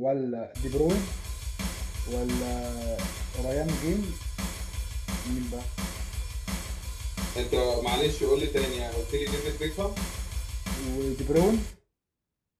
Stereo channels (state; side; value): identical; both; correlation 1.00